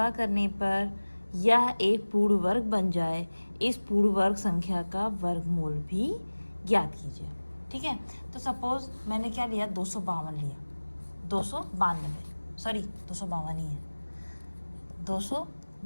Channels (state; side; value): inverted; both; correlation -1.00